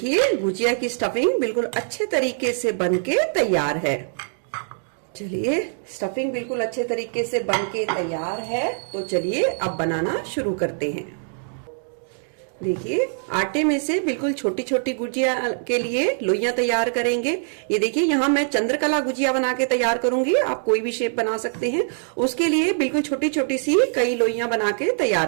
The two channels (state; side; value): silent; left; digital silence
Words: गुजिया की स्टफिंग बिल्कुल अच्छे तरीके से बनके तैयार है। चलिए स्टफिंग बिल्कुल अच्छे तरीके से बनके तैयार है, तो चलिए अब बनाना शुरू करते हैं। देखिए आटे में से बिल्कुल छोटी छोटी गुजिया के लिए लोइयां तैयार करेंगे। ये देखिए यहाँ मैं चंद्रकला गुजिया बना के तैयार करूंगी, आप कोई भी शेप बना सकते हैं। उसके लिए बिल्कुल छोटी छोटी सी कई लोइयां बना के